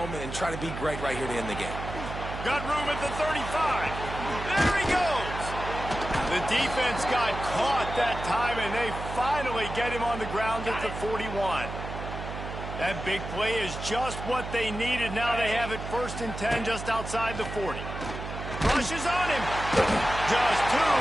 and try to be great right here to end the game. Got room at the 35. There he goes. The defense got caught that time, and they finally get him on the ground at the 41. That big play is just what they needed. Now they have it 1st and 10 just outside the 40. Rushes on him. Just too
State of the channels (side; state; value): right; noise; hum, 8 dB below the sound